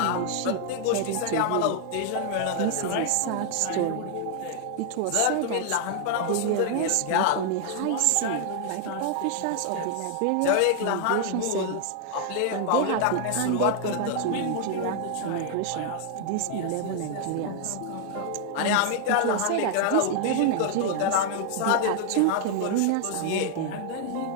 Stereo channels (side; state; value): both; different; correlation 0.00